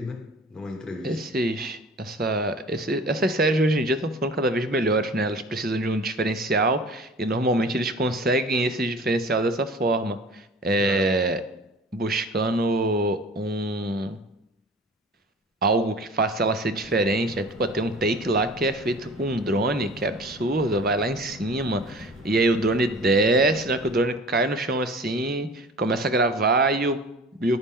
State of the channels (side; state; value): both; normal; correlation 0.43